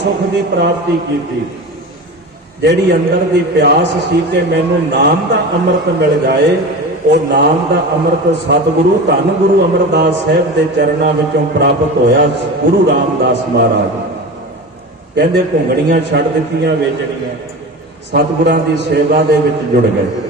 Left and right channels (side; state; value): both; normal; correlation 0.30